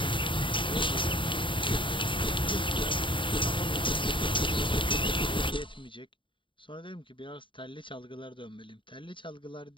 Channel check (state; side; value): late; right; 0.24 ms